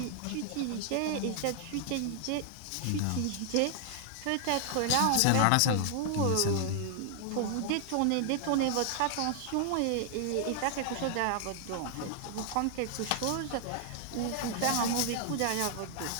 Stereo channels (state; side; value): different; both; correlation 0.00